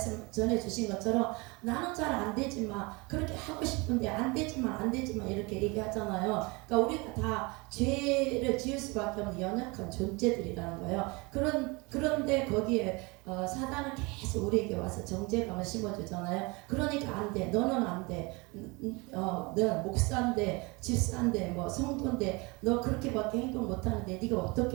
전해주신 것처럼 나는 잘 안되지만 그렇게 하고 싶은데 안되지만 이렇게 얘기하잖아요. 그러니까 우리가 다 죄를 지을 수밖에 없는 연약한 존재들이라는 거예요. 그런데 거기에 사단은 계속 우리에게 와서 정죄감을 심어주잖아요. 그러니까 안돼, 너는 안돼, 너 목사인데 집사인데 뭐 성도인데 너 그렇게밖에 행동 못하는데 네가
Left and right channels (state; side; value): quieter; left; 26.8 dB